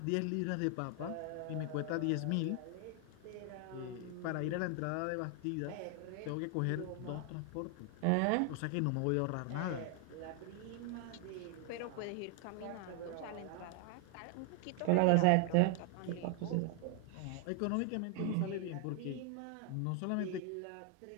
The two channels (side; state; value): both; different; correlation 0.00